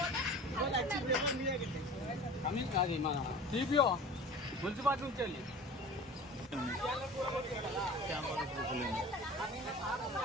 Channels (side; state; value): both; normal; correlation 0.40